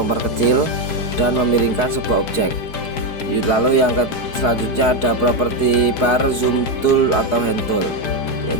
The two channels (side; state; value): right; late; 4.8 ms